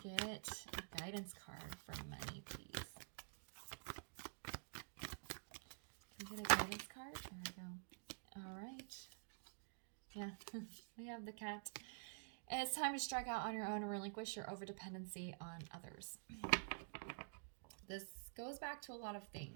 a guidance card for money, please? Can we get a guidance card? There we go. All right. Yeah, we have the cat. And it's time to strike out on your own and relinquish your overdependency on others. This goes back to a lot of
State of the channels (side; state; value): left; silent; digital silence